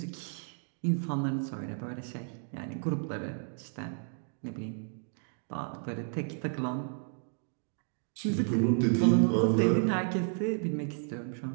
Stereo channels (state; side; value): silent; left; 56 dB below the other